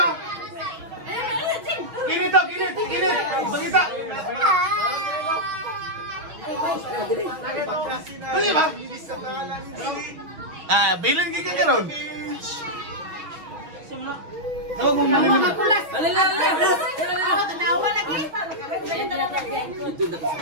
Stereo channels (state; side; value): late; left; 6.5 ms